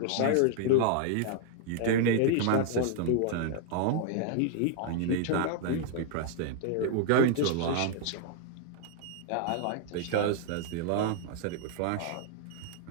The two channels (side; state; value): both; different; correlation 0.00